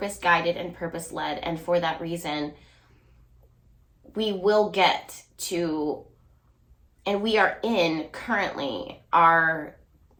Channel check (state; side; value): identical; both; correlation 1.00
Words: and purpose-led, and for that reason, we will get to, and we are in currently our